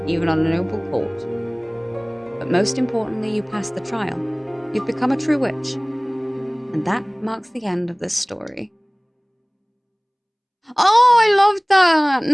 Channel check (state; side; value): identical; both; correlation 1.00